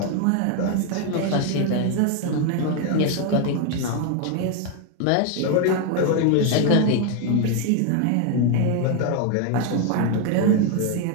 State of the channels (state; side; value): different; both; correlation 0.01